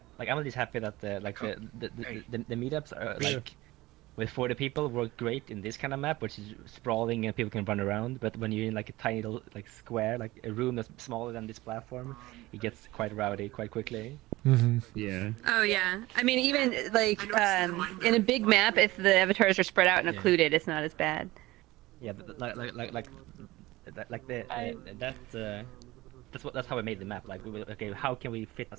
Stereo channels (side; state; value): left; quieter; 19.0 dB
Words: I'm just happy that the meetups are like with 40 people work great in this kind of map, which is sprawling and people can run around. But when you're in like a tiny little like square, like a room that's smaller than this platform, it gets quite rowdy quite quickly. Yeah. Oh yeah. I mean, even like in a big map, if the avatars are spread out and occluded, it's not as bad. Yeah, but that's how we made the map. Like, okay, how can we fit